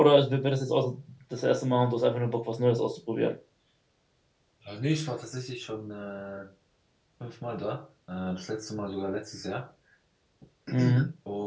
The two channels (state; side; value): identical; both; correlation 1.00